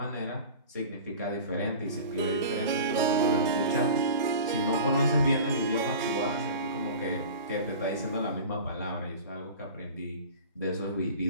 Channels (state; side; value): inverted; both; correlation -0.38